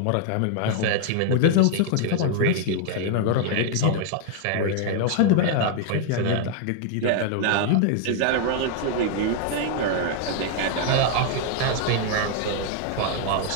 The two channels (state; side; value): different; both; correlation 0.00